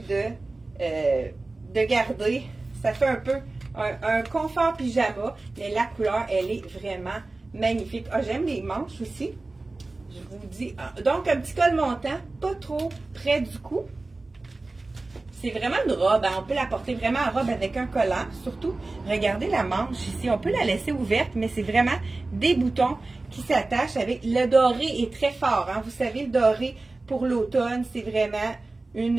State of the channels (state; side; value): quieter; left; 3.2 dB